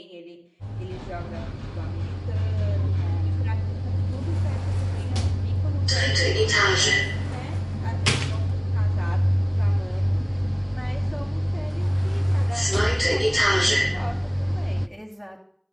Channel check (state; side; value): identical; both; correlation 1.00